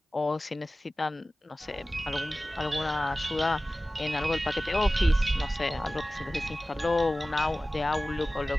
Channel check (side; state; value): both; normal; correlation 0.96